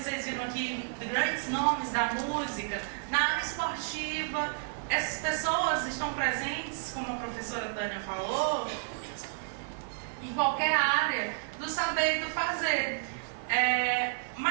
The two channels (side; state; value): left; silent; digital silence